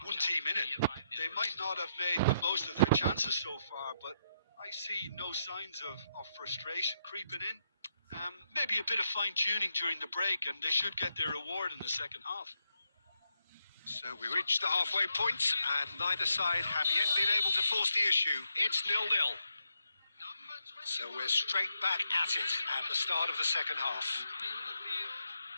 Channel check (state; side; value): inverted; both; correlation -0.80